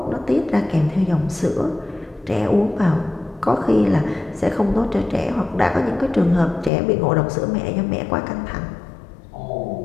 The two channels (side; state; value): right; drops out; at 6.7 s